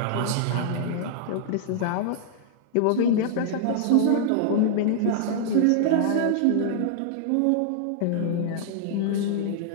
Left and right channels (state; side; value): different; both; correlation -0.01